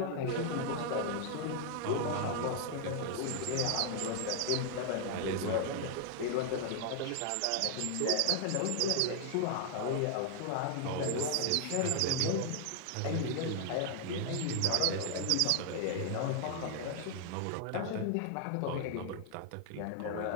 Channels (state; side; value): different; both; correlation 0.00